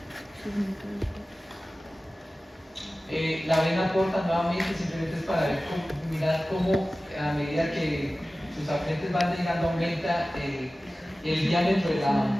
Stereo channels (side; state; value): both; normal; correlation 0.96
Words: La vena porta nuevamente simplemente es para ver mirar cómo a medida que sus afluentes van llegando aumenta el diámetro